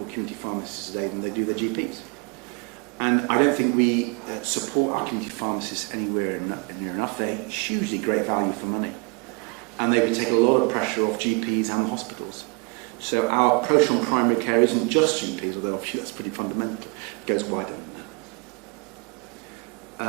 community pharmacists today than they do their GPs. And I don't think we support our community pharmacists anywhere near enough. They're hugely great value for money. And they take a lot of pressure off GPs and hospitals. So our approach on primary care isn't just GPs, although obviously that's pretty fundamental. It goes wider.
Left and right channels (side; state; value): left; quieter; 32.4 dB